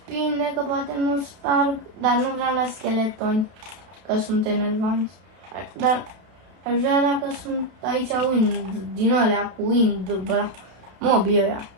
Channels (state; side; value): late; left; 32 ms